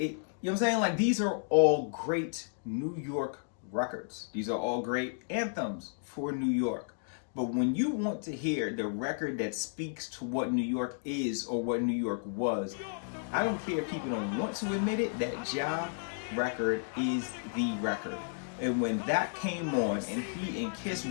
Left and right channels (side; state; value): right; silent; digital silence